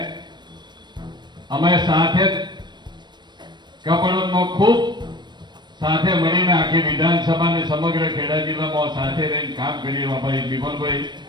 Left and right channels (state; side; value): late; left; 0.22 ms